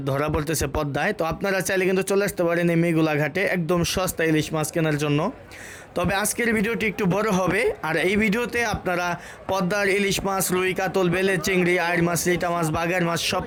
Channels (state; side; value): identical; both; correlation 1.00